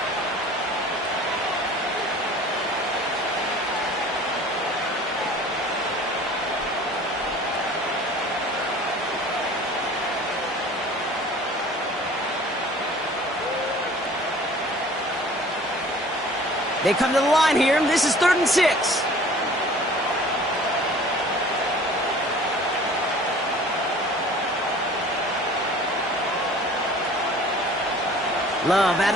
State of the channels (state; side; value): normal; both; correlation 0.47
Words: They come to the line here. This is 3rd and 6. Love out